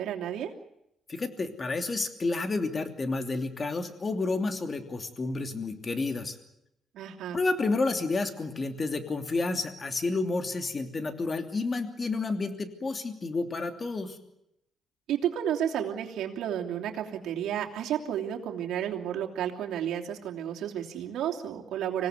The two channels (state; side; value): normal; both; correlation 0.75